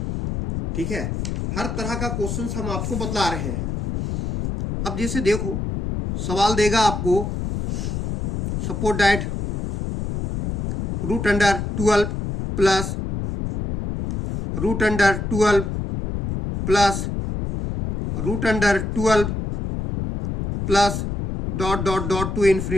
ठीक है, हर तरह का क्वेश्चंस हम आपको बतला रहे हैं। अब जैसे देखो सवाल देगा आपको, suppose that root under 12 plus root under 12 plus root under 12 plus dot dot dot to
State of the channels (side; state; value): left; noise; rumble, 4 dB below the sound